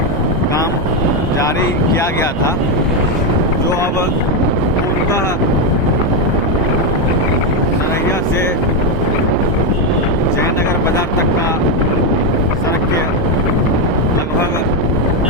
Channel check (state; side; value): normal; both; correlation 0.06